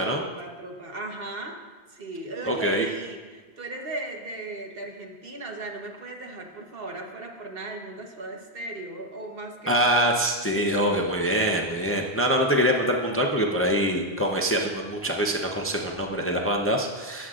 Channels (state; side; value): normal; both; correlation 0.03